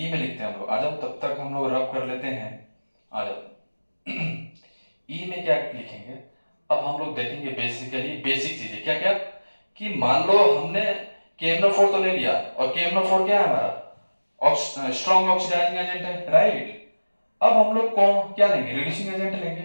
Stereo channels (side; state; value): both; inverted; correlation -1.00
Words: में लिखते हैं हम लोग, आ जाओ, तब तक हम लोग रब कर लेते हैं, आ जाओ। ई में क्या लिखेंगे, अब हम लोग देखेंगे बेसिकली बेसिक चीजें क्या क्या, कि मान लो हमने KMnO4 तो ले लिया, और KMnO4 क्या है हमारा, स्ट्रॉन्ग ऑक्सीडाइजिंग एजेंट है राइट। अब हम लोग कौन क्या लेंगे, रिड्यूसिंग एजेंट